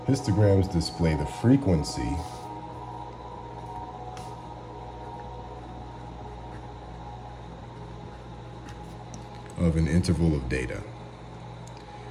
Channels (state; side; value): identical; both; correlation 1.00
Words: Histograms display the frequency of an interval of data.